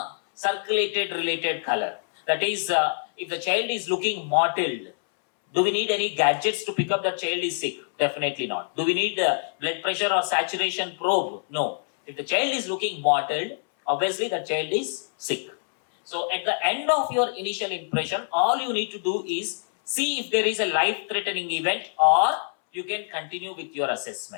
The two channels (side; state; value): right; silent; 61 dB below the other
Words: circulated related color. That is, if the child is looking mottled, do we need any gadgets to pick up that child is sick? Definitely not. Do we need blood pressure or saturation probe? No. If the child is looking mottled, obviously the child is sick. So at the end of your initial impression, all you need to do is see if there is a life-threatening event or you can continue with your